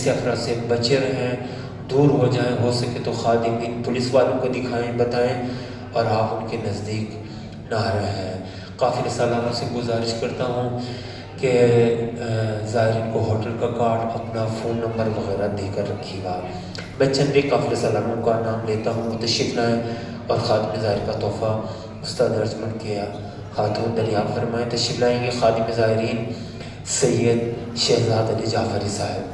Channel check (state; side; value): identical; both; correlation 1.00